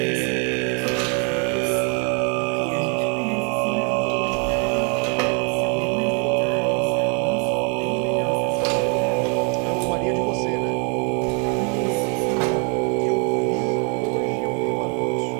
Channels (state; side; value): quieter; left; 38.0 dB